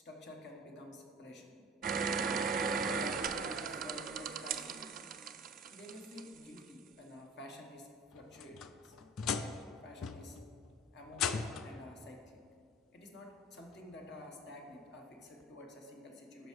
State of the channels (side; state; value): both; normal; correlation 0.41